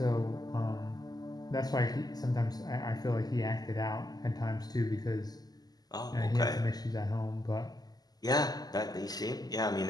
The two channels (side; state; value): right; late; 0.19 ms